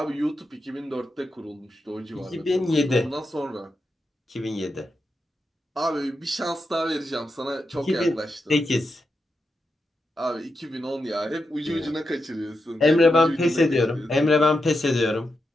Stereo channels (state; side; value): normal; both; correlation 0.87